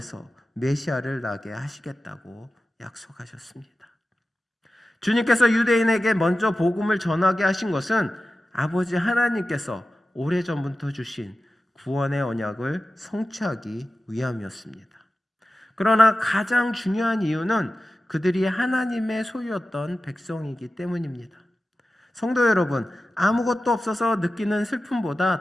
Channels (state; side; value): normal; both; correlation 0.94